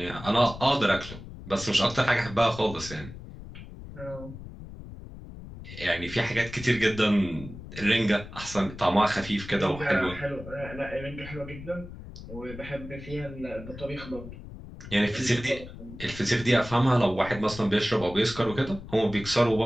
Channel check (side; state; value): left; noise; rumble, 13 dB below the sound